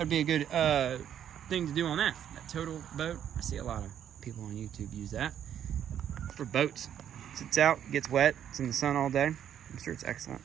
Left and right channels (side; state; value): left; quieter; 9.7 dB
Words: be a good thing to do on that Total Boat. I see a lot of people on YouTube use that for boats. Sits out, gets wet, it's in the sun all day. I'm sure it's excellent.